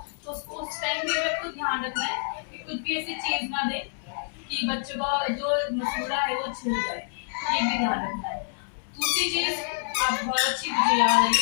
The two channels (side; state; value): right; silent; 60 dB below the other